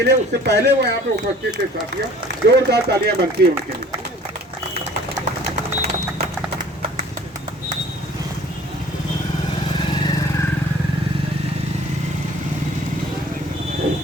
लिए, उससे पहले वो यहाँ पे उपस्थित थे साथियों। जोरदार तालियां बनती है उनके लिए।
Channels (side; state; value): both; normal; correlation 0.51